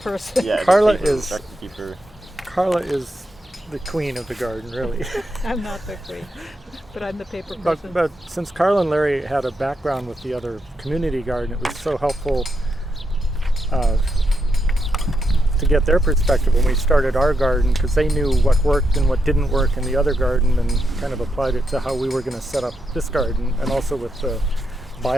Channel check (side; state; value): both; normal; correlation 0.82